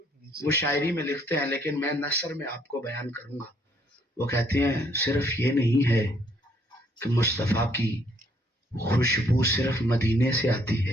وہ شاعری میں لکھتے ہیں لیکن میں نثر میں آپ کو بیان کروں گا، وہ کہتے ہیں صرف یہ نہیں ہے کہ مصطفیٰ کی خوشبو صرف مدینے سے آتی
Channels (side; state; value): both; normal; correlation 0.67